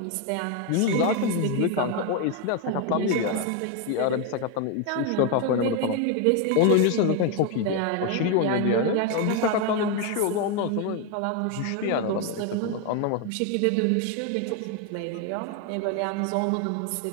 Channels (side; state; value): both; different; correlation 0.01